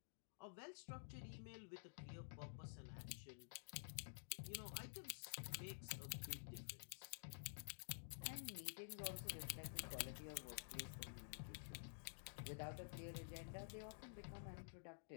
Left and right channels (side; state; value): right; silent; digital silence